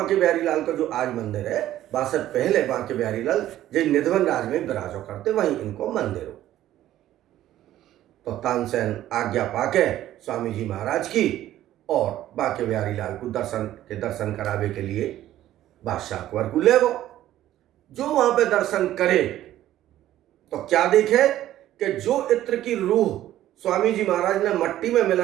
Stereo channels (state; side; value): quieter; left; 13.3 dB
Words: बिहारी लाल का जो आज मंदिर है, बादशाह पहले बांके बिहारी लाल जो निधवन राज में विराजो करते, वहीं इनको मंदिर हो। तो तानसेन आज्ञा पाके स्वामी जी महाराज की और बांके बिहारी लाल को दर्शन करावे के लिए बादशाह अकबर को ले गो। जो वहां पे दर्शन करे तो क्या देखे कि जो इत्र की रूह स्वामी जी महाराज ने मट्टी में